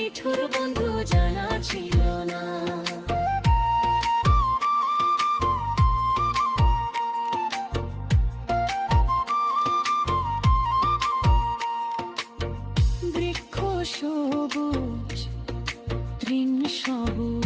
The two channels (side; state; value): both; identical; correlation 1.00